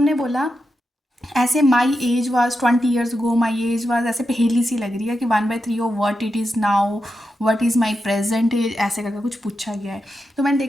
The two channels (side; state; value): both; normal; correlation 0.88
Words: बोला ऐसे my age was 20 years go, my age was, ऐसे पहेली सी लग रही है कि 1/3 of what it is now, what is my present age, ऐसे करके कुछ पूछा गया है। तो मैंने